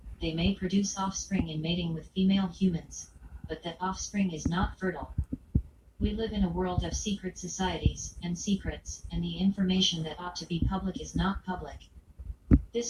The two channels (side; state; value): both; identical; correlation 1.00